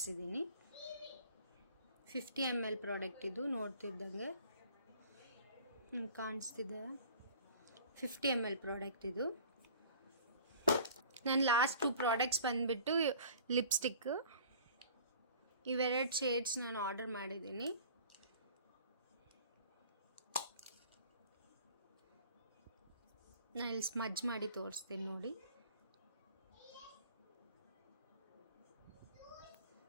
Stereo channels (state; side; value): inverted; both; correlation -0.47